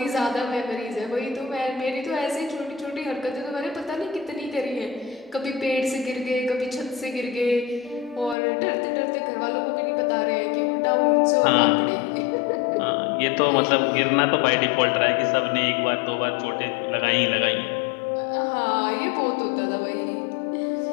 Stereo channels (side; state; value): right; drops out; at 8.3 s